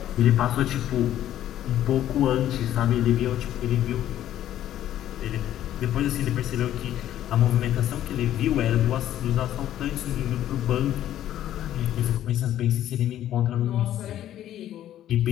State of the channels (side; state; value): right; quieter; 12.1 dB